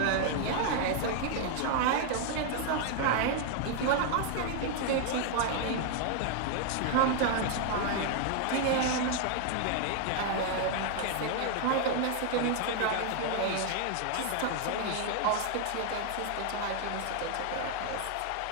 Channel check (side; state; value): both; different; correlation 0.00